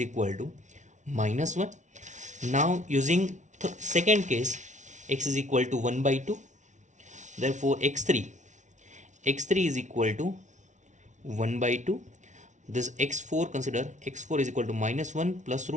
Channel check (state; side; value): late; left; 0.36 ms